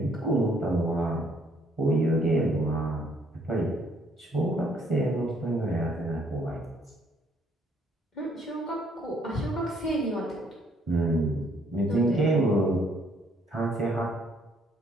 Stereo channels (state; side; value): normal; both; correlation 0.66